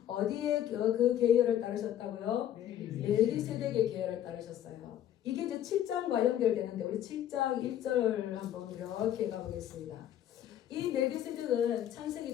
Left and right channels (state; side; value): quieter; right; 11.2 dB